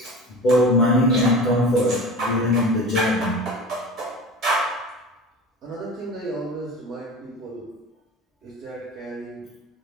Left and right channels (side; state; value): both; normal; correlation 0.34